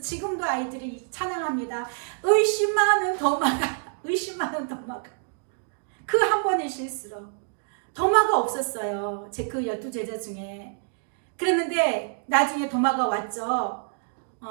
아이들이 찬양합니다. 의심하는 도마가 그 한 번의 실수로 도마가 없었어요. 제 그 12제자 중에. 그랬는데 나중에 도마가 왔죠.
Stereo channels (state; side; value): silent; left; digital silence